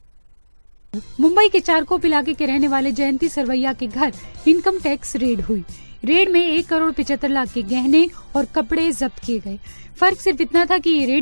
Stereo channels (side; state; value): both; inverted; correlation -1.00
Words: मुंबई के चारकोप इलाके के रहने वाले जयंती सरवैया के घर इनकम टैक्स रेड हुई। रेड में 1,75,00,000 के गहने और कपड़े जब्त किए गए। फर्क सिर्फ इतना था कि ये